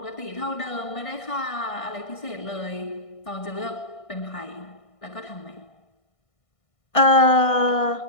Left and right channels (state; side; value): late; right; 1.6 ms